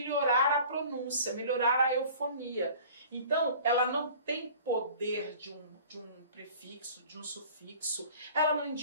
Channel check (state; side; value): inverted; both; correlation -0.46